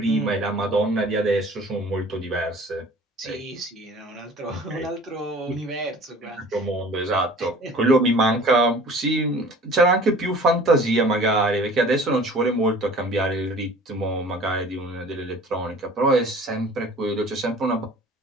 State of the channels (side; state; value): both; normal; correlation 0.46